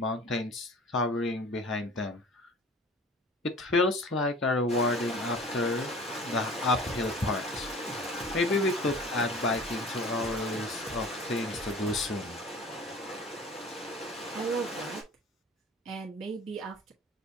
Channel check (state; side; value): normal; both; correlation 0.43